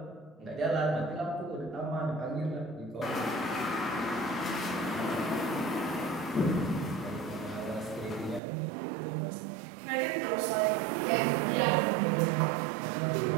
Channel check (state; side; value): drops out; left; at 8.4 s